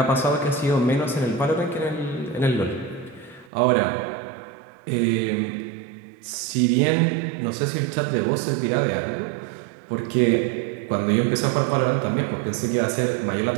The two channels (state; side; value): drops out; left; at 3.5 s